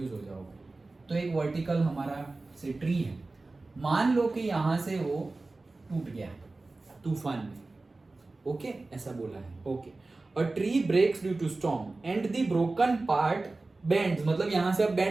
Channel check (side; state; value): left; quieter; 3.3 dB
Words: हो जाओगे। तो एक वर्टिकल हमारा से ट्री है, मान लो कि यहां से वो टूट गया तूफान में। ओके ऐसा बोला है। Okay a tree breaks due to storm and the broken part bends, मतलब यहां से अब